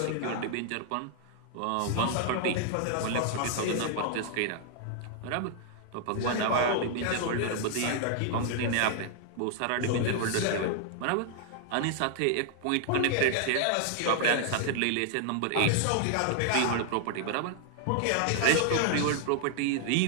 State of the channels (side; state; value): both; different; correlation -0.01